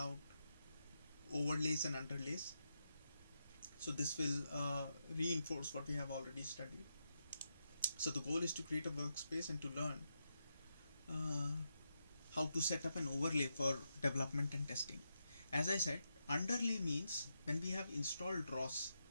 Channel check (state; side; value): inverted; both; correlation -0.85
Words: overlays and underlays, so this will reinforce what we have already studied. So the goal is to create a workspace and to learn how to set up an overlay for development and testing. As I said, underlay means when we have installed ROS,